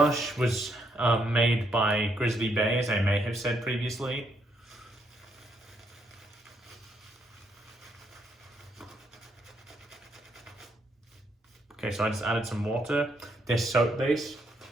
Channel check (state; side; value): normal; both; correlation 0.75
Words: was made by Grizzly Bay, as I may have said previously. Okay, so I just added some water. This soap base,